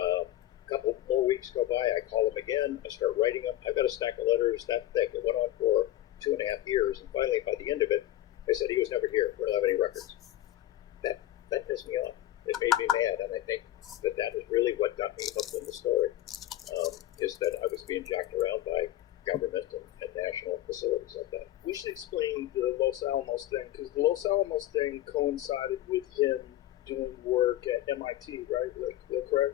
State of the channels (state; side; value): quieter; right; 14.0 dB